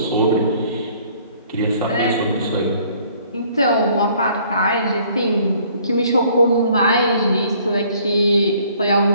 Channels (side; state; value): both; inverted; correlation -0.59